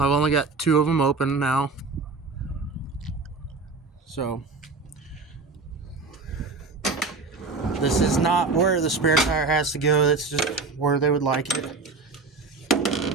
only got 2 of them open now. So this is not where the spare tire has to go. That's just where they would like it.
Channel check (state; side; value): quieter; left; 4.0 dB